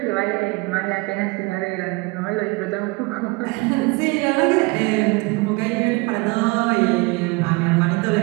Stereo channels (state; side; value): quieter; left; 26.0 dB